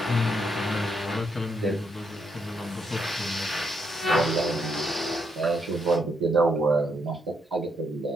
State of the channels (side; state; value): both; normal; correlation 0.77